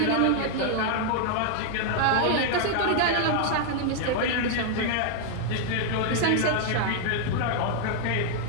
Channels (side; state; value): both; different; correlation 0.00